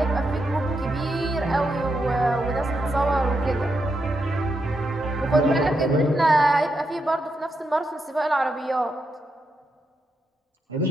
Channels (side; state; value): both; normal; correlation 0.83